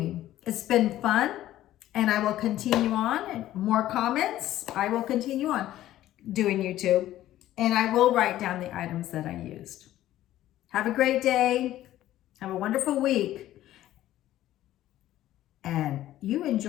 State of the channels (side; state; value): right; quieter; 13.8 dB